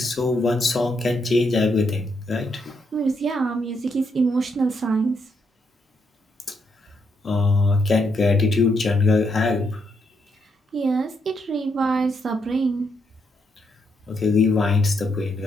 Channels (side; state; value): both; normal; correlation 0.77